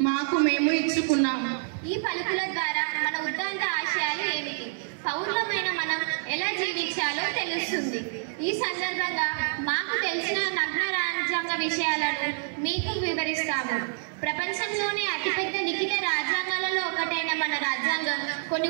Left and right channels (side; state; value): left; silent; 60 dB below the other